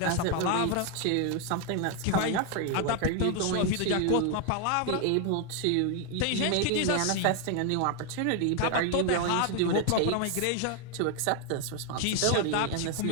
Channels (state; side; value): different; both; correlation 0.01